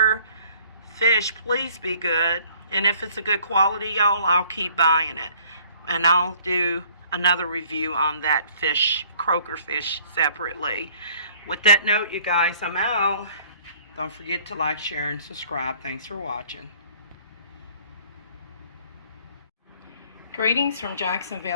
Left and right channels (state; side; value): inverted; both; correlation -0.57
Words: fish. Please be good, and if it's a good quality, y'all, I'll keep buying it, and I'll do another review on that fish, CROAKER fish, separately. With that note, you guys, I'm out. Don't forget to like, share, and subscribe. Thanks for watching. Greetings from